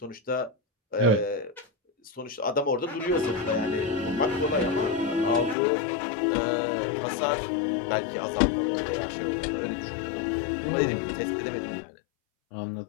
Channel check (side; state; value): right; drops out; at 5.6 s